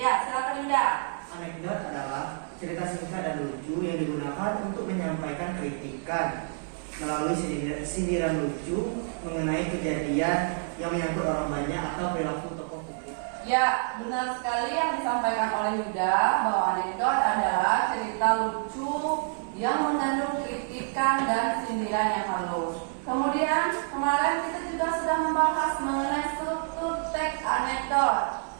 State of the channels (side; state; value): left; silent; 59 dB below the other